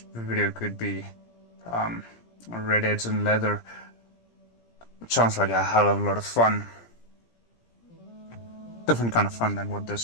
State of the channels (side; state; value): right; late; 17 ms